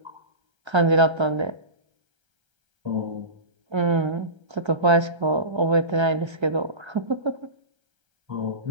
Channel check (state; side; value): late; left; 1.3 ms